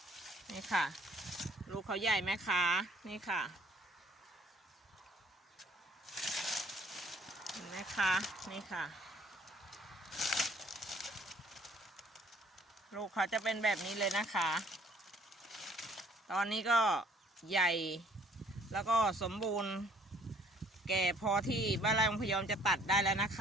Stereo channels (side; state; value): both; normal; correlation 0.59